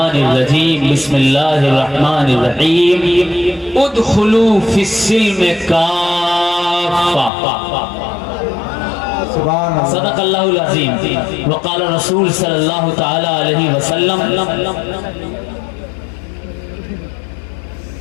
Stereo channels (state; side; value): drops out; right; at 7.3 s